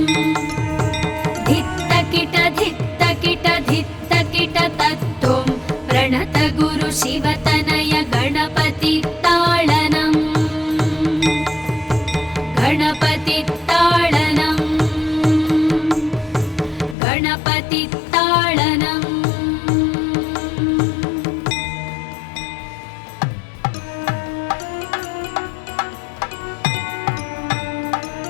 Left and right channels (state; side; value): drops out; right; at 16.9 s